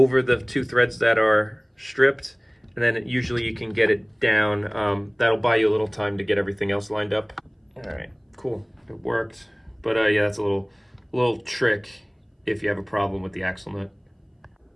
the two threads that are stripped. And then usually you can get it down. That'll buy you a little time to get everything else lined up. All right, cool, it worked. But yeah, that's a little trick if you have a problem with the axle nut.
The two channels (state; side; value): identical; both; correlation 1.00